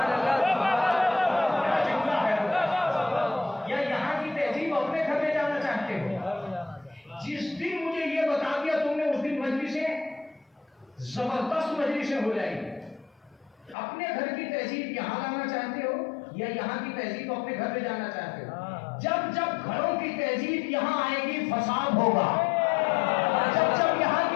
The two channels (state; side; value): drops out; right; at 13.8 s